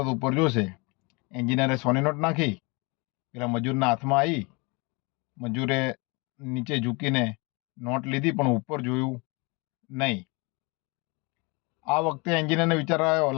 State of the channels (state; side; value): quieter; right; 28.4 dB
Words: ઉપર જોશે. એન્જિનિયરે 100ની નોટ નાખી, પેલા મજૂરના હાથમાં આવી. મજૂરે નીચે ઝૂકીને નોટ લીધી પણ ઉપર જોયું નહીં. આ વખતે એન્જિનિયરને વિચાર આવ્યો,